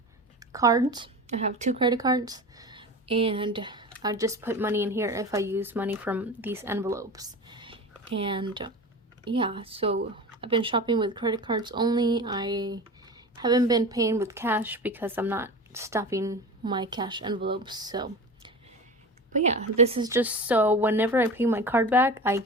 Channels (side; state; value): both; normal; correlation 0.31